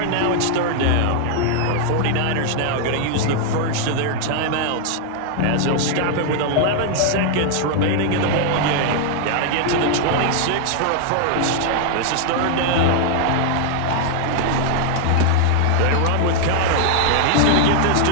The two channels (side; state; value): both; different; correlation 0.00